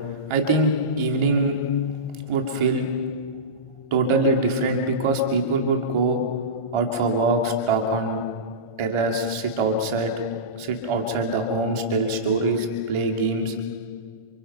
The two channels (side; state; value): right; late; 1.5 ms